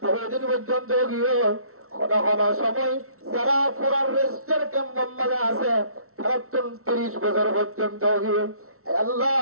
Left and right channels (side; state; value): left; late; 0.63 ms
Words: বহুদিন পর্যন্ত গিয়ে কোন কোন সময় যারা পুরার রেস্টের ক্যাম্পের মাঝে আছে তারা 30 বছর পর্যন্ত গিয়ে আল্লাহ